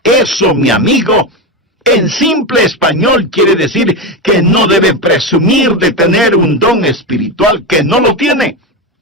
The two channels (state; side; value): normal; both; correlation 0.15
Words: Eso, mi amigo, en simple español quiere decir que no debe presumir de tener un don espiritual que no lo tiene.